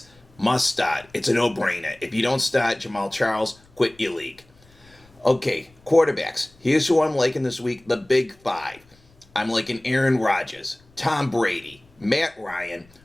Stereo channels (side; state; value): left; noise; rumble, 30 dB below the sound